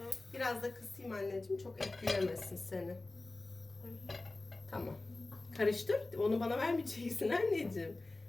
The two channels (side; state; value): right; quieter; 3.1 dB